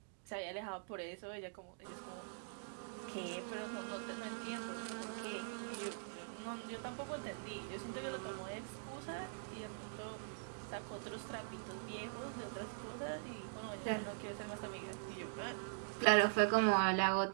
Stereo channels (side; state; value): left; silent; digital silence